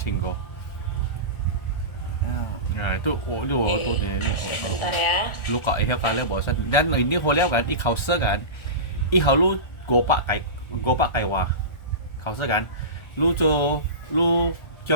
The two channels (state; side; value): late; right; 1.3 ms